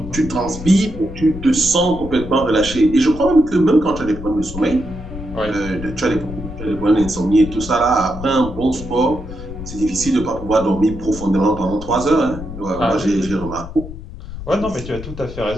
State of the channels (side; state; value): left; noise; rumble, 11 dB below the sound